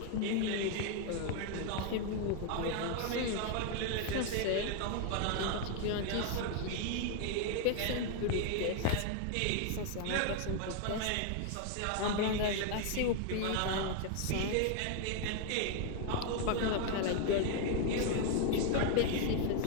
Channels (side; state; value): both; different; correlation 0.00